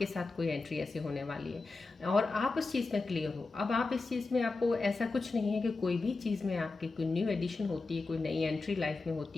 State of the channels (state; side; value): quieter; right; 3.7 dB